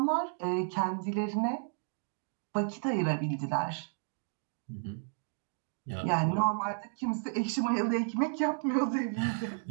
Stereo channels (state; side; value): silent; left; 56 dB below the other